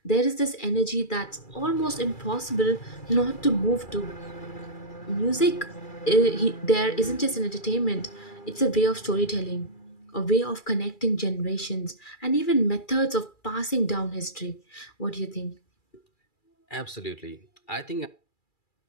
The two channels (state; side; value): late; right; 2.3 ms